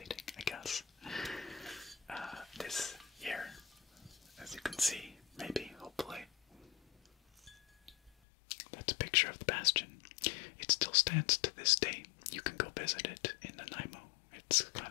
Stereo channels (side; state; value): right; drops out; at 8.1 s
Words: I guess. This here, as you can see, maybe, hopefully, that's a picture of the Bastion. It still stands to this day. You can go visit it in Nanaimo. It's